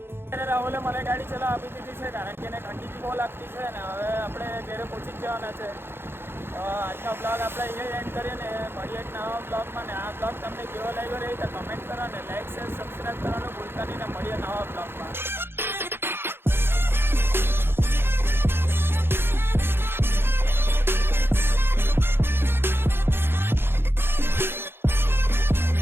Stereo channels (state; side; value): late; left; 0.11 ms